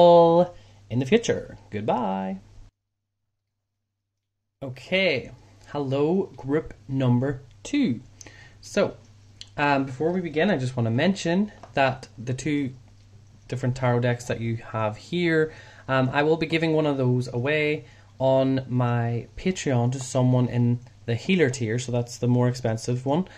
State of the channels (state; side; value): identical; both; correlation 1.00